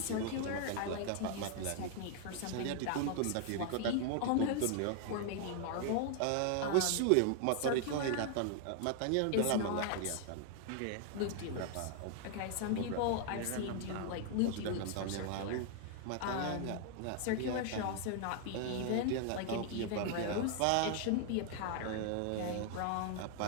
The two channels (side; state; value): both; different; correlation 0.00